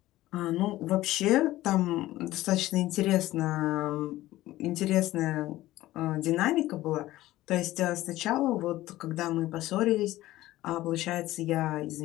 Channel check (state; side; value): quieter; right; 16.2 dB